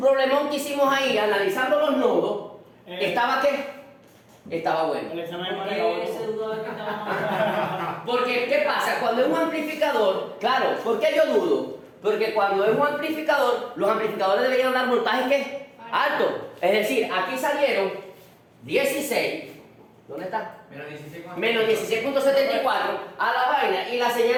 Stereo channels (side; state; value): both; identical; correlation 1.00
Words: que hicimos ahí, analizando los nodos, ¿estaba qué? Estaba bueno. El examen de ¿Por manera. qué ese dudaba que estaba Porque, ¿qué pasa? Cuando es un amplificador, claro, ¿por qué yo dudo? Porque cuando es un amplificador, los amplificadores deberían dar voltajes ¿qué? Altos. Es decir, aquí salieron 16, ¿dónde está? Menos 16. Menos 16.74 a la vaina y la